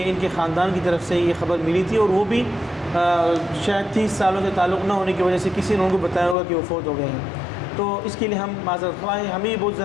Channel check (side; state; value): right; drops out; at 6.4 s